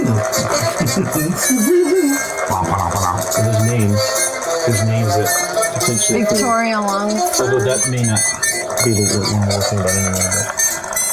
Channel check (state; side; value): identical; both; correlation 1.00